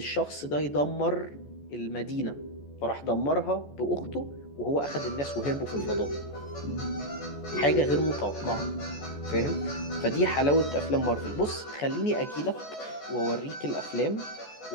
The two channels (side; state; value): right; late; 14 ms